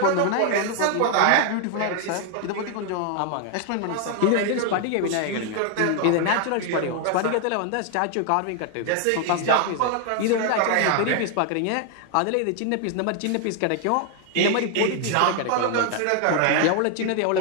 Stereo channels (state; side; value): different; both; correlation 0.00